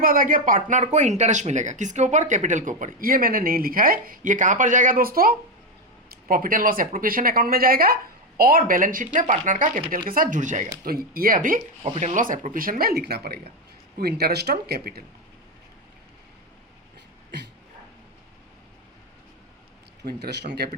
आ गया पार्टनर को इंटरेस्ट मिलेगा, किसके ऊपर, कैपिटल के ऊपर, ये मैंने नहीं लिखा है, ये कहाँ पर जाएगा दोस्तों, profit and loss appropriation account में जाएगा, और बैलेंस शीट में पार्टनर का कैपिटल के साथ जुड़ जाएगा, तो ये अभी प्रॉफिट एंड लॉस एप्रोप्रिएशन में लिखना पड़ेगा, टू इंटरेस्ट ऑन कैपिटल। तो इंटरेस्ट ऑन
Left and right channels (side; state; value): both; normal; correlation 0.09